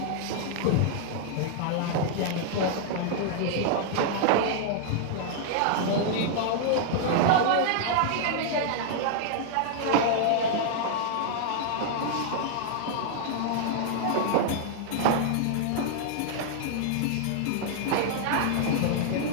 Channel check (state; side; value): different; both; correlation -0.01